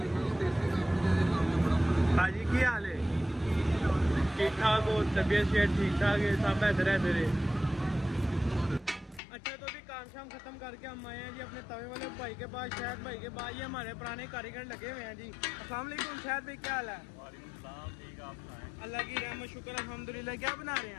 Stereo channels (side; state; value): right; drops out; at 9.2 s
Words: हाँ जी, क्या हाल है? ठीक ठाक हो? तबीयत शेयर ठीक ठाक है? सब बेहतर है तेरे? अच्छा तो अभी काम शाम खत्म करके हम आए हैं जी अपने तवे वाले भाई के पास, शायद भाई के पास। ये हमारे पुराने कारीगर लगे हुए हैं जी। अस्सलाम वालेकुम शायद भाई, क्या हाल है? अल्लाह की रहमत शुक्र अल्हम्दुलिल्लाह। क्या बना रहे